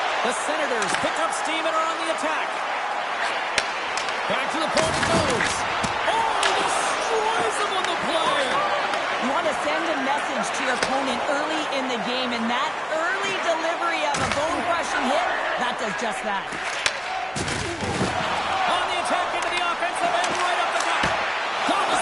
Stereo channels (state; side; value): identical; both; correlation 1.00